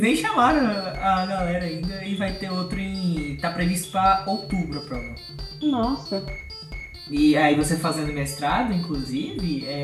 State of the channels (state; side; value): identical; both; correlation 1.00